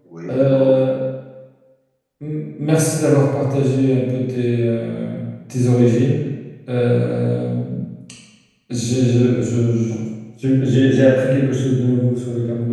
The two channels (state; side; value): identical; both; correlation 1.00